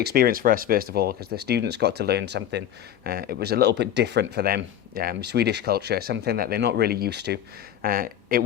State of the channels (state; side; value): quieter; right; 10.6 dB